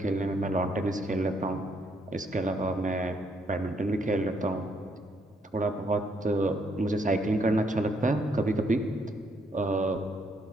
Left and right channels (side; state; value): both; normal; correlation 0.72